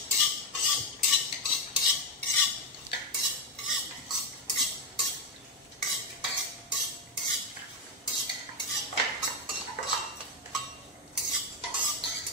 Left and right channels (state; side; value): normal; both; correlation 0.05